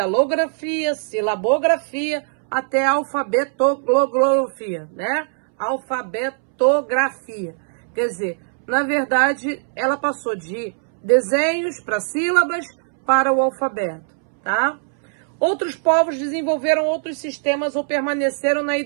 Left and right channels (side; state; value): left; silent; 65 dB below the other